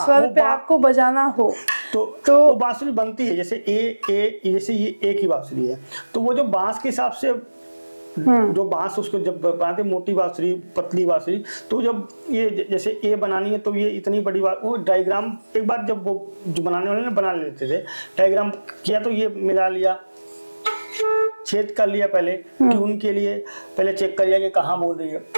पे आपको बजाना हो तो वो बांसुरी बनती है जैसे जैसे ये ए की बांसुरी है, तो वो जो बांस के हिसाब से जो बांस उसको जब बनाते मोटी बांसुरी, पतली बांसुरी, तो जब ये जैसे ए बनानी है तो ये इतनी बड़ी बात, वो डायग्राम एक बार जब वो जो बनाने वाले ने बना लेते थे, डायग्राम किया तो ये मिला लिया, छेद कर लिया, पहले ट्यून के लिए पहले चेक कर लिया कि कहाँ बोल रही है,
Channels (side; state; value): both; inverted; correlation -1.00